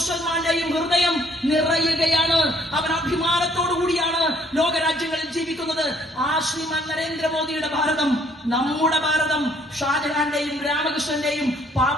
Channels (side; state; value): both; normal; correlation 0.63